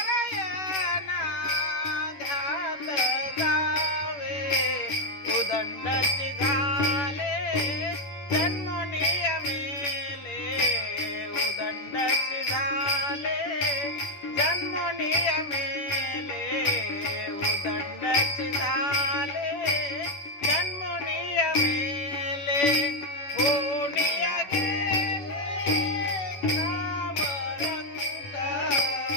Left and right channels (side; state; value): right; late; 11 ms